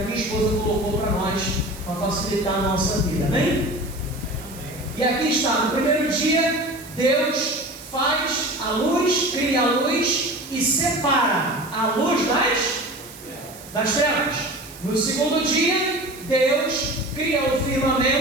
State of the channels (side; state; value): right; noise; hiss, 18 dB below the sound